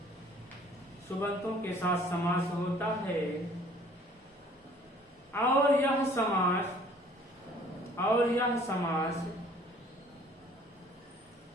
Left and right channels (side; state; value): both; normal; correlation 0.54